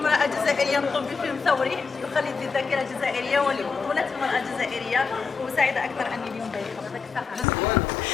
جزائرية تقوم بفيلم ثوري يخلد الذاكرة الجزائرية ولبطولة المرأة الجزائرية، وسعيدة أكثر أني اليوم ضيفة.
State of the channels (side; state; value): right; quieter; 5.3 dB